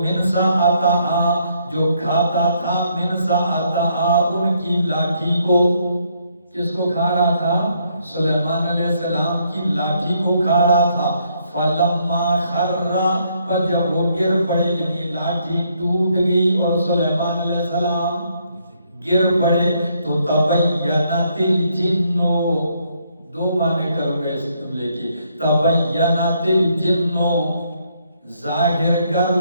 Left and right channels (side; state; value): both; inverted; correlation -0.72